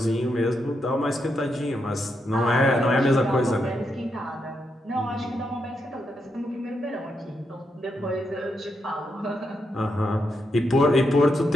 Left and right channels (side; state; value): both; normal; correlation 0.82